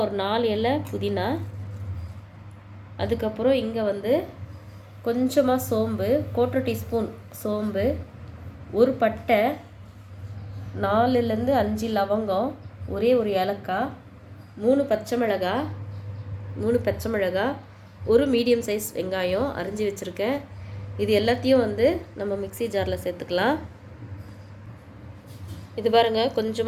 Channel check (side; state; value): both; identical; correlation 1.00